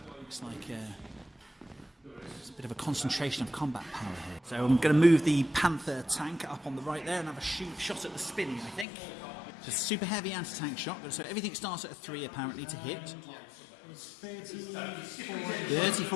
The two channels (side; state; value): right; drops out; at 8.8 s